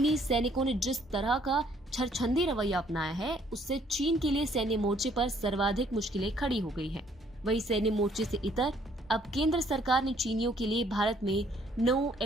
सैनिकों ने जिस तरह का छरछंदी रवैया अपनाया है, उससे चीन के लिए सैन्य मोर्चे पर सर्वाधिक मुश्किलें खड़ी हो गई हैं। वही सैन्य मोर्चे से इतर अब केंद्र सरकार ने चीनियों के लिए भारत में नो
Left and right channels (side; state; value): both; normal; correlation 0.64